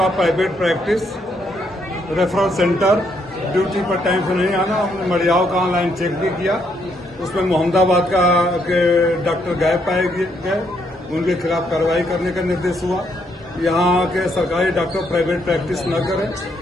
private practice, referral centre, duty पर टाइम से नहीं आना। हमने मड़ियाव का ऑनलाइन चेक भी किया, उसमें मोहम्मदाबाद का के डॉक्टर गायब पाए गए, उनके खिलाफ कार्रवाई करने का निर्देश हुआ। यहाँ के सरकारी डॉक्टर प्राइवेट प्रैक्टिस न करें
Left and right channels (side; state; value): both; normal; correlation 0.74